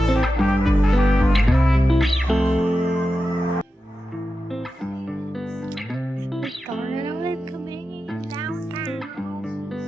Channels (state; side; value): normal; both; correlation 0.91